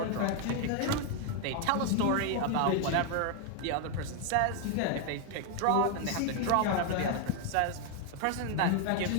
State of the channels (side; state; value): both; different; correlation 0.01